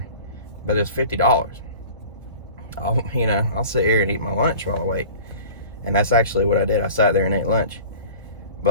but it's $50. I'll sit here and eat my lunch while I wait. And that's actually what I did. I sat there and ate lunch.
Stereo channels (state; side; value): inverted; both; correlation -0.41